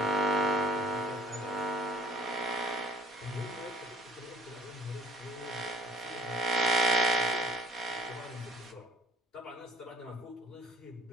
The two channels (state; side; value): normal; both; correlation 0.52